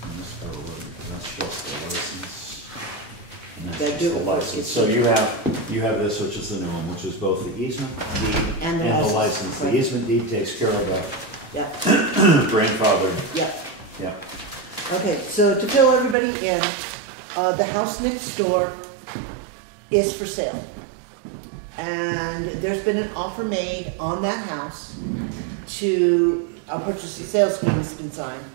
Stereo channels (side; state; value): left; drops out; at 16.2 s